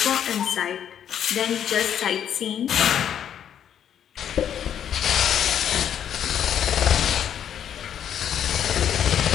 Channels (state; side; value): quieter; right; 9.4 dB